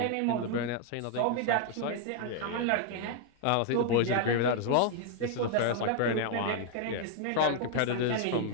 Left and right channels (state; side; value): different; both; correlation 0.00